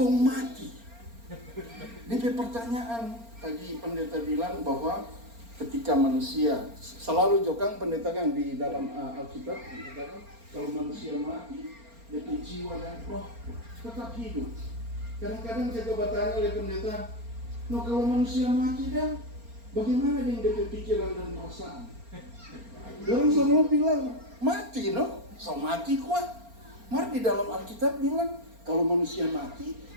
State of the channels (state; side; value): late; left; 4.3 ms